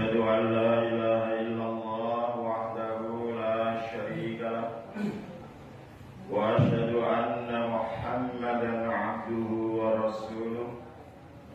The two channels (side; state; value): both; identical; correlation 1.00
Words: an la ilaha illallah wahdahu la syarika lah. Wa asyhadu anna Muhammadan 'abduhu wa rasuluh.